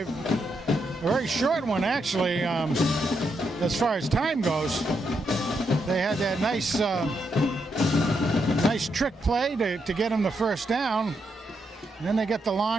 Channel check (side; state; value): both; normal; correlation 0.81